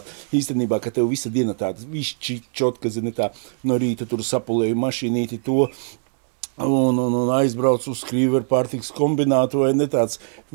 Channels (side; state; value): left; silent; 64 dB below the other